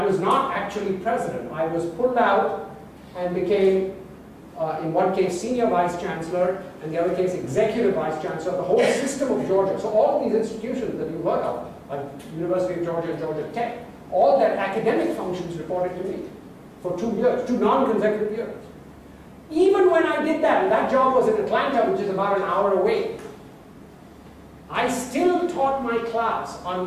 was not actually president. I was pulled out and became, in one case, senior vice chancellor, and the other case, executive vice chancellor, the whole system of Georgia. So all of these institutions that you've heard of, like University of Georgia and Georgia Tech, all their academic functions reported to me for 2 years, 2 non-consecutive years. Even when I did that, and that job was in Atlanta, which is about an hour away, I still taught my class on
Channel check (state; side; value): identical; both; correlation 1.00